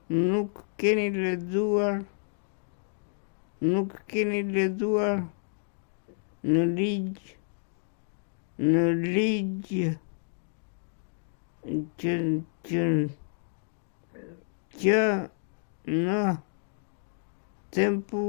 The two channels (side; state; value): right; silent; digital silence